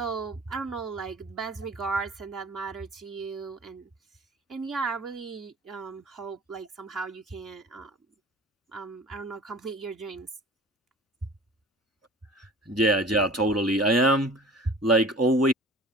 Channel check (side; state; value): both; normal; correlation 0.44